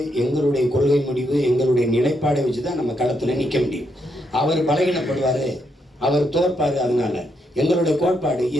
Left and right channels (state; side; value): normal; both; correlation 0.79